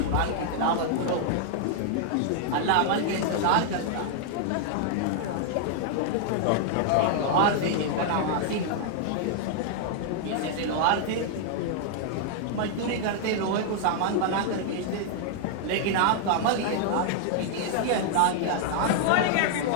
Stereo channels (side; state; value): both; different; correlation -0.01